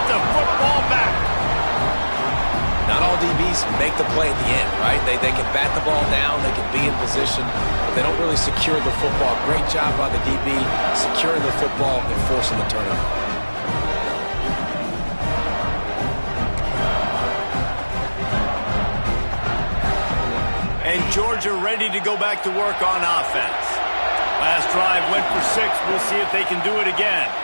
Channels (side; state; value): both; inverted; correlation -1.00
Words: the football back. Not all DBs make the play at the end, right? They can bat the ball down, they can be in position, but they don't really secure the football. Great job by the DB securing the football and forcing the turnover. And Georgia ready to go back to work on offense. Last drive went for 6. We'll see if they can do it again.